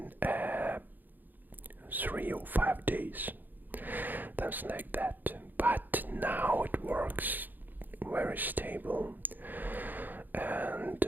3 or 5 days, something like that. But now it works very stable, and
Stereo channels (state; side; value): late; left; 0.087 ms